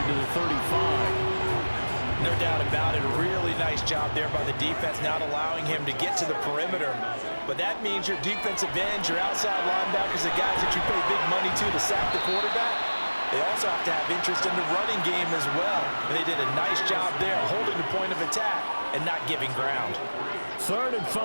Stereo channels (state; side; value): inverted; both; correlation -1.00